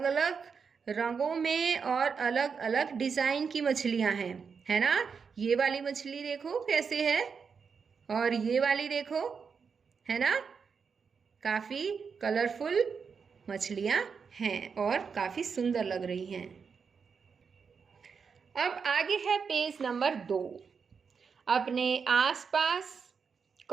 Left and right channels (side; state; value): left; quieter; 5.9 dB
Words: अलग रंगों में और अलग अलग डिज़ाइन की मछलियां हैं, है ना। ये वाली मछली देखो कैसे है और ये वाली देखो, है ना। काफ़ी कलरफुल मछलियां हैं और काफ़ी सुंदर लग रही हैं। अब आगे है पेज नंबर 2। अपने आसपास